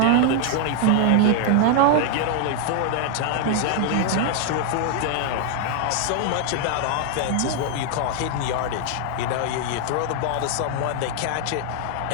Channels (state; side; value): different; both; correlation 0.00